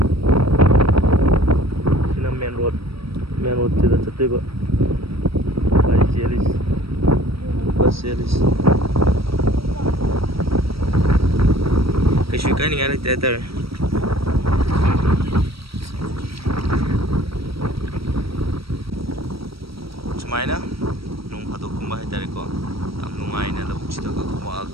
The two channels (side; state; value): left; late; 0.75 ms